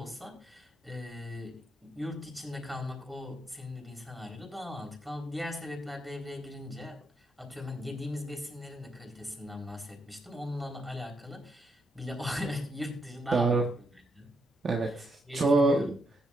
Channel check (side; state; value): both; normal; correlation 0.79